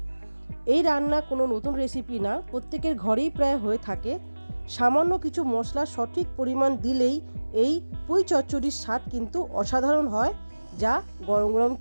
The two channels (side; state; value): both; inverted; correlation -1.00